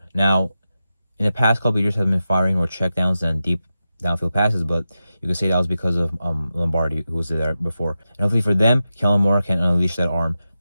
Now, in the past couple of years, have been firing more checkdowns than deep downfield passes, but you could say that was because of Lombardi, who was there before. And hopefully for them, Kellen Moore can unleash that arm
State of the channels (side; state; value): both; inverted; correlation -0.91